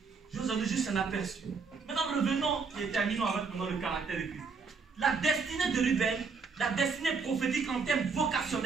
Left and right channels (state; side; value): quieter; left; 5.0 dB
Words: Je vous en ai juste un aperçu. Maintenant, revenons et terminons avec le caractère de Christ. La destinée de Ruben, la destinée prophétique en termes